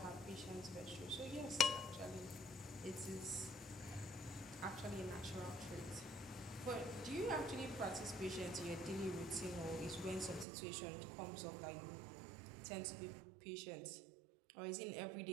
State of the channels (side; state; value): left; drops out; at 10.5 s